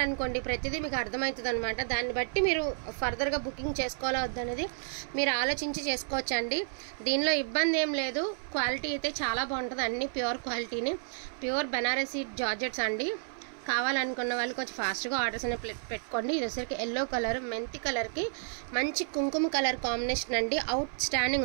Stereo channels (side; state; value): left; silent; 57 dB below the other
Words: ప్రతిదీ మీకు అర్థమవుతుంది అనమాట. దాన్ని బట్టి మీరు ఫర్దర్గా బుకింగ్ చేసుకోవాలా వద్దనేది మీరు ఆలోచించి చేసుకోవచ్చు అండి. దీనిలో ఇబ్బంది ఏం లేదు. క్వాలిటీ అయితే చాలా బాగుంటుంది, అన్ని ప్యూర్ క్వాలిటీని, ప్యూర్ బెనారసీ జార్జెట్స్ అండి. కావాలనుకున్న వాళ్ళు కొంచెం ఫాస్ట్గా ఆర్డర్స్ అనేవి పెట్టుకోండి. ఇది వచ్చరికి ఎల్లో కలర్, మెంతి కలర్కి మంచి కుంకుమ కలర్ కాంబినేషన్ అండి, అవుట్